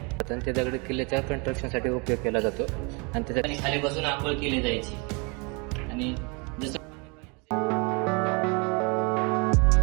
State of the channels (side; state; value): left; quieter; 31.3 dB